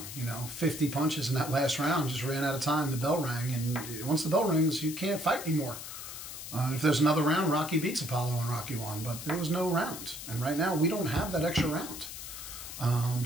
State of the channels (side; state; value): left; noise; hiss, 10 dB below the sound